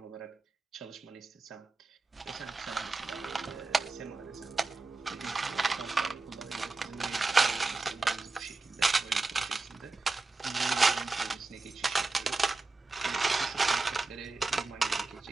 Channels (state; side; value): quieter; left; 3.6 dB